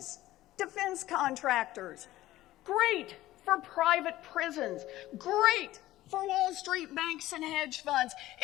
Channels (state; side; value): quieter; right; 15.7 dB